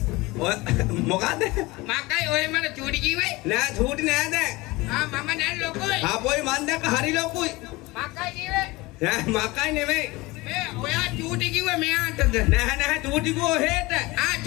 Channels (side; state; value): right; quieter; 22.0 dB